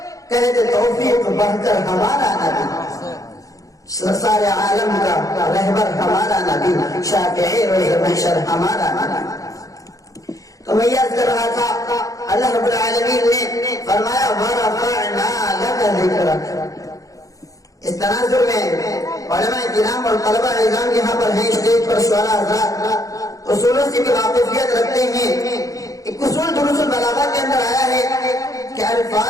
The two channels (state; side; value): late; right; 0.17 ms